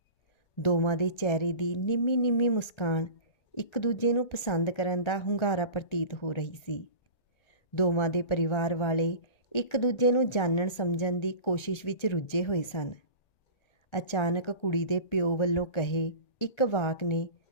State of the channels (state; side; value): late; right; 1.4 ms